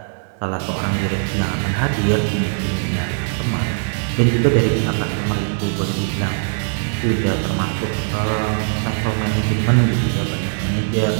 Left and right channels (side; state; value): left; silent; digital silence